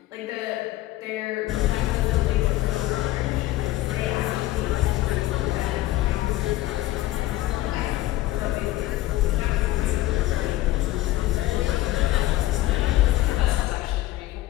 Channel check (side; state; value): right; quieter; 16.2 dB